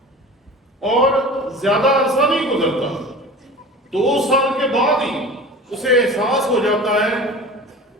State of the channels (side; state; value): both; normal; correlation 0.37